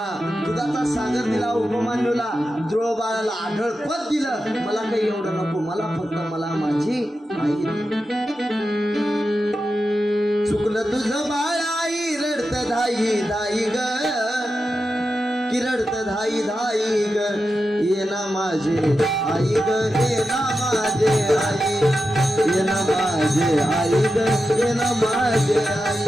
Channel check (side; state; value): both; normal; correlation 0.90